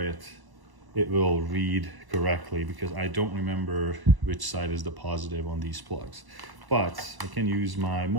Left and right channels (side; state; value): left; late; 1.0 ms